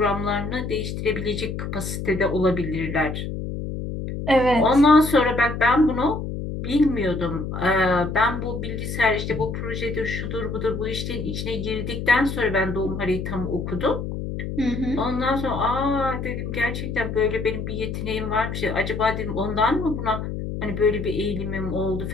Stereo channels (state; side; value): noise; left; hum, 5 dB below the sound